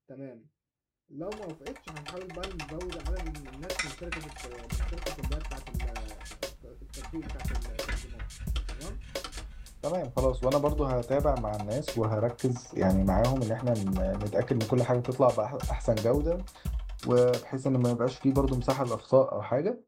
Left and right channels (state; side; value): identical; both; correlation 1.00